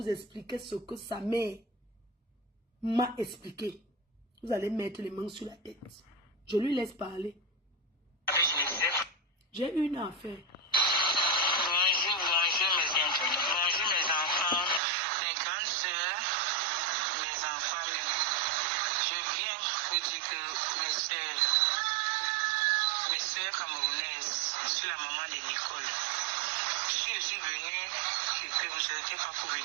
expliquait ce que sa mère m'a expliqué, vous allez mettre les mains sur la tête. Je lui laisse parler. J'ai une affaire. Camerounaise, je suis la maman de Nicole. Si je suis venue, que vous n'étiez pas pour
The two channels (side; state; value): left; drops out; at 14.8 s